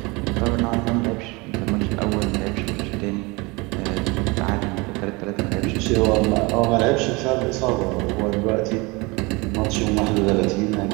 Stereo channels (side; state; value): left; quieter; 25.8 dB